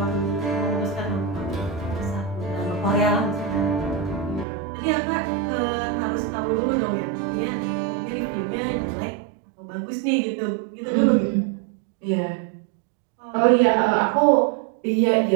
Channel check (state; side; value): drops out; left; at 4.5 s